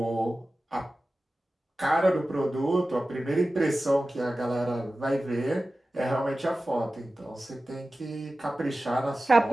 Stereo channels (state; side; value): normal; both; correlation 0.95